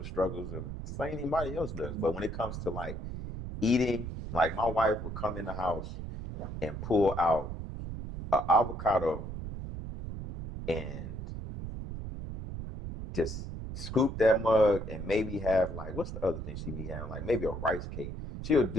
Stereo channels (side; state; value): right; noise; rumble, 7 dB below the sound